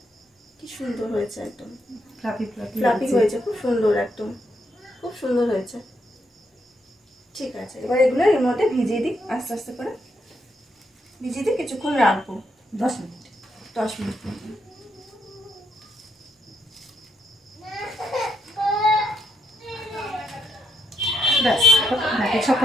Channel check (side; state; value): both; normal; correlation 0.76